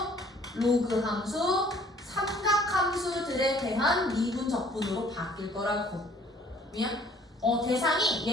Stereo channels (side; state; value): both; normal; correlation 0.58